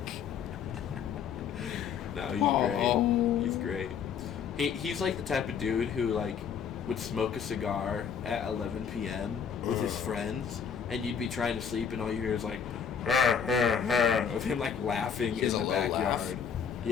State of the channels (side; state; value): right; quieter; 7.2 dB